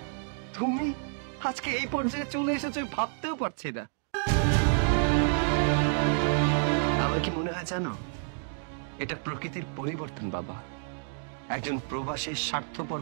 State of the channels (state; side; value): silent; left; 58 dB below the other